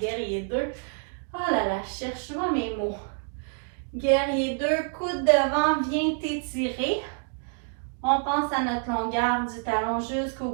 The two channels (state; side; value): silent; left; 55 dB below the other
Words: 2. Oh là là, cherche-moi mes mots. Guerrier 2, coude devant, viens t'étirer. On pense à notre longueur du talon jusqu'au